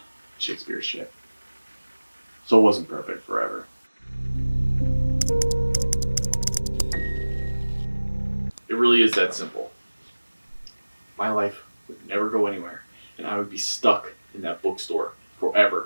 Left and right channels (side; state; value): both; inverted; correlation -1.00